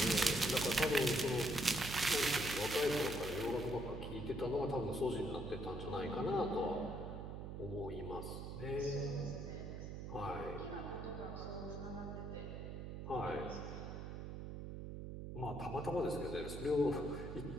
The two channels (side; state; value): right; noise; hum, 7 dB below the sound